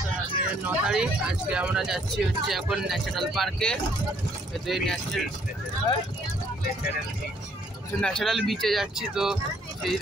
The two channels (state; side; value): normal; both; correlation 0.65